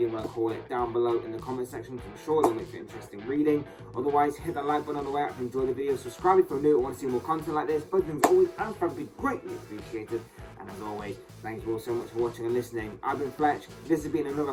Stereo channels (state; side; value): identical; both; correlation 1.00